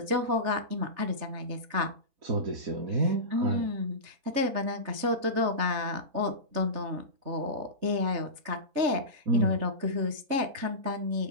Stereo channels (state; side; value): late; left; 3.4 ms